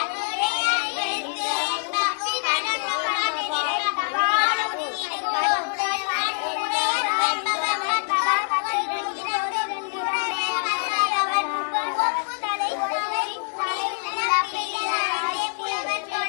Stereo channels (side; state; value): right; silent; 59 dB below the other